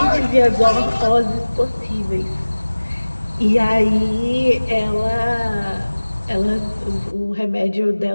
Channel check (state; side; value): inverted; both; correlation -1.00